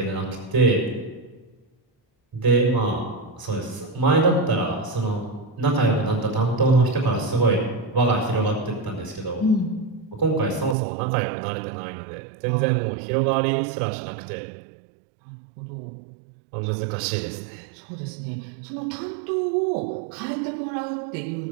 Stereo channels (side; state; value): left; drops out; at 10.8 s